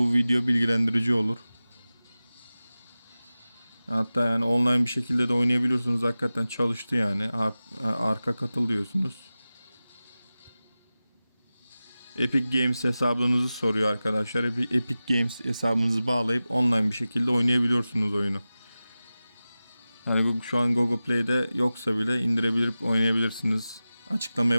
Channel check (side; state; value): both; inverted; correlation -0.96